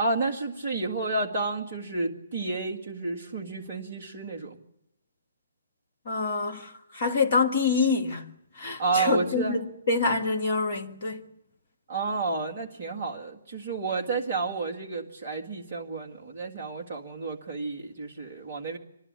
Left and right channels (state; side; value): inverted; both; correlation -0.50